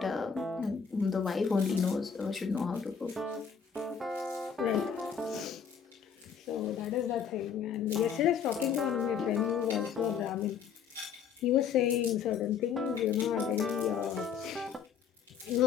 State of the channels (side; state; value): right; quieter; 7.1 dB